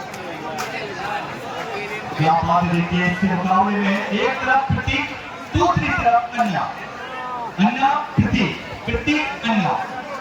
क्या बात देखिए इसके मुकाबले में एक तरफ प्रतीक, दूसरी तरफ अन्ना, अन्ना प्रतीक, प्रतीक अन्ना।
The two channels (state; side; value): identical; both; correlation 1.00